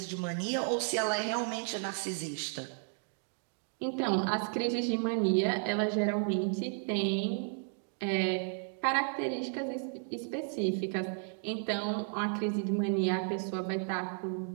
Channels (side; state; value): left; silent; 55 dB below the other